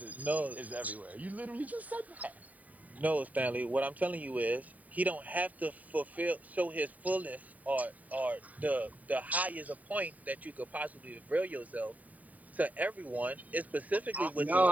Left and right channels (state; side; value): late; left; 0.073 ms